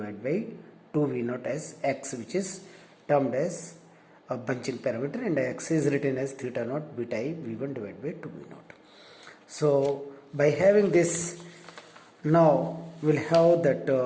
by 2 V naught as x, which is termed as a bunching parameter, and x is written as theta naught beta I V1 divided by 2 V naught. So by having this, now we'll have that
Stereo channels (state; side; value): identical; both; correlation 1.00